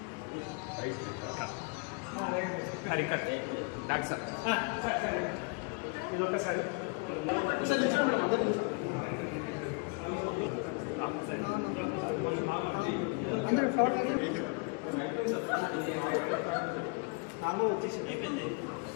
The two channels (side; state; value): right; quieter; 32.6 dB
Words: డాక్టర్ ఇదొకసారి అయిపోయింది.